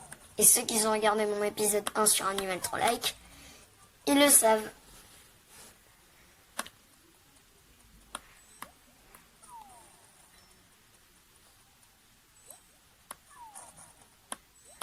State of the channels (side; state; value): both; identical; correlation 1.00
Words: Et ceux qui ont regardé mon épisode 1 sur Animal Troll Like, ils le savent.